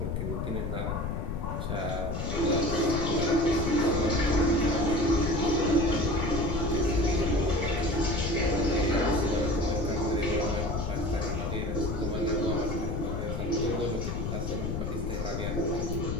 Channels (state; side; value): noise; left; rumble, 2 dB below the sound